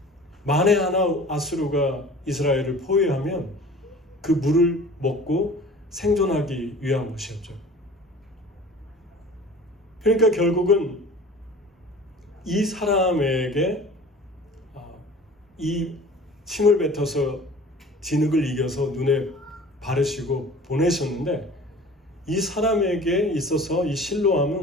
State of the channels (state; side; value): normal; both; correlation 0.43